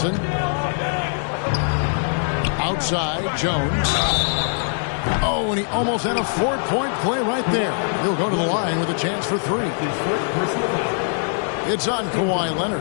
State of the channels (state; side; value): silent; right; 60 dB below the other